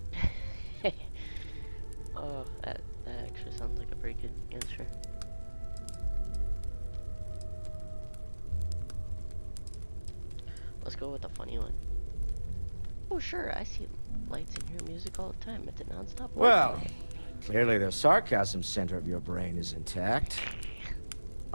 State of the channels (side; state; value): both; inverted; correlation -1.00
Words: Oh, that actually sounds like a pretty good answer. Let's go with the funny one. Oh, sure, I see lights in your music all the time. It's a non-stop. Well, clearly the sarcasm center of your brain is intact.